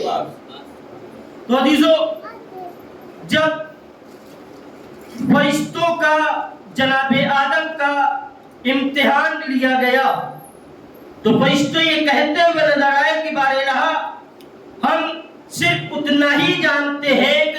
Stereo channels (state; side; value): identical; both; correlation 1.00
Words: تو عزیزو، جب فرشتوں کا جناب آدم کا امتحان لیا گیا تو فرشتے یہ کہتے ہوئے نظر آئے کہ بار الہ ہم صرف اتنا ہی جانتے ہیں